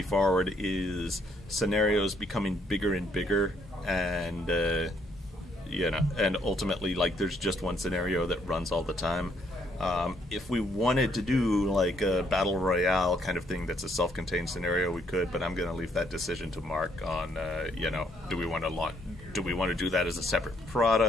forward is scenarios becoming bigger and bigger, and and ultimately, like, there's just one scenario that runs all the time. If we wanted to do like a battle royale kind of thing that's a self-contained scenario, we could, but I'm going to leave that decision to Mark on do we want to do that as a separate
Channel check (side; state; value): both; normal; correlation 0.70